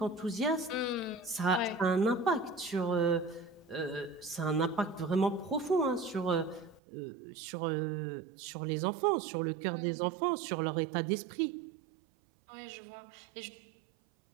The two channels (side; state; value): left; drops out; at 6.8 s